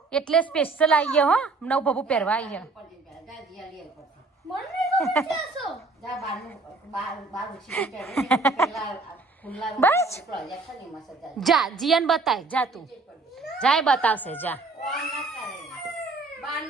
એટલે સ્પેશિયલ આવીએ હો નવું બાબુ પહેરવા આવીએ બસ જા જીયન બતાય જા તું જાય બતાવશે જા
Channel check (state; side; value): quieter; left; 3.7 dB